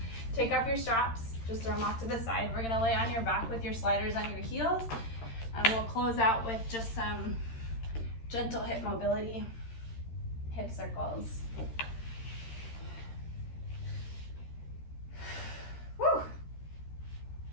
Take off your straps, just throw them off to the side. We're gonna lay on your back with your sliders on your heels, and we'll close out with just some gentle hip mobility, hip circles. Woo!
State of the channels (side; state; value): right; late; 13 ms